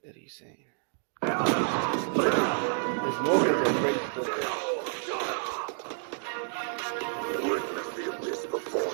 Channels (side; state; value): left; silent; digital silence